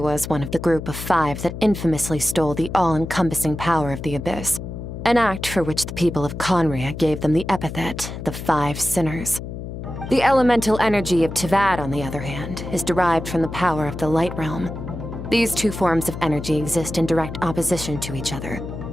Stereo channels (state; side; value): noise; left; hum, 8 dB below the sound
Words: one of the group of 5 that infamously stole the all-encompassing power of the Abyss, an act for which the people of Conria gave them the epithet, the 5 Sinners. The elemental energy of Tevat, on the other hand, is derived from the power of the Light Realm. These 2 forms of energy exist in direct opposition to each other.